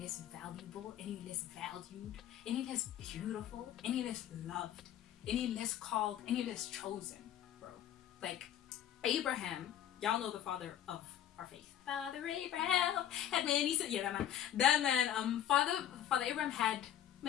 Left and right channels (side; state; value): right; quieter; 10.7 dB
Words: valuable, any less valued, any less beautiful, any less loved, any less called, any less chosen, bro. Like Abraham, y'all know the father of our faith. Father Abraham had many sons. Yeah, that man. Father Abraham had